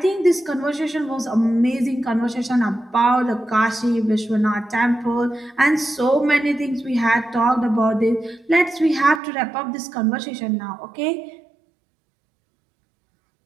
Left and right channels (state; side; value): drops out; left; at 9.2 s